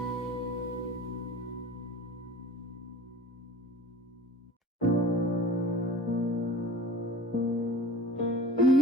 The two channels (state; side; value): normal; both; correlation 0.43